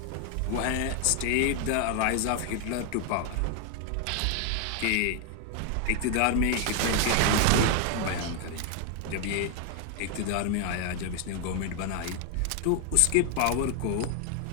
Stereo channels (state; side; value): different; both; correlation 0.00